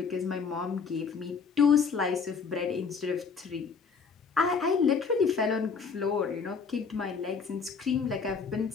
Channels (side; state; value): right; quieter; 5.5 dB